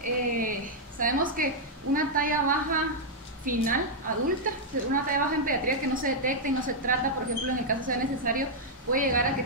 sabemos que una talla baja final, adulta, una talla baja en pediatría que no se detecta y no se trata, por ejemplo, en el caso sea necesario, puede llegar a que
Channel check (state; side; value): normal; both; correlation -0.05